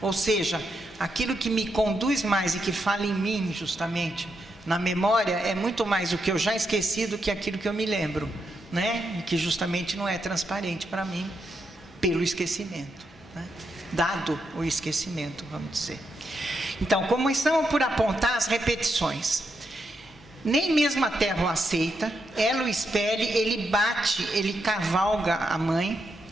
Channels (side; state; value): both; normal; correlation 0.82